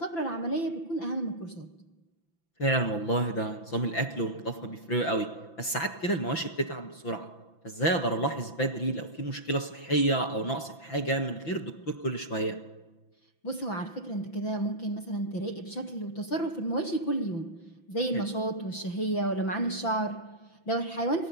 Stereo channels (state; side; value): late; right; 5.9 ms